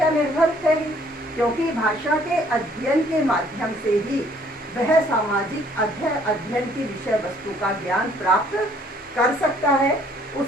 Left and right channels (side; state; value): both; normal; correlation 0.61